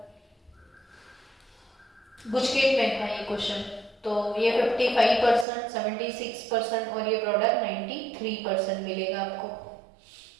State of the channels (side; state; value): left; drops out; at 5.5 s